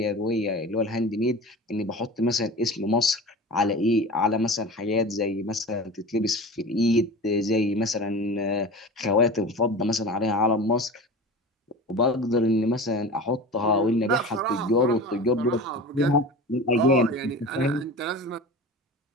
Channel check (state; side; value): normal; both; correlation 0.34